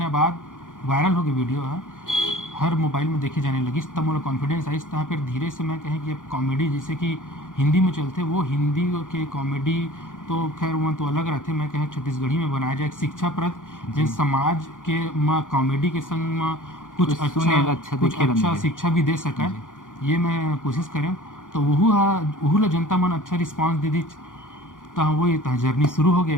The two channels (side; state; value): right; late; 0.88 ms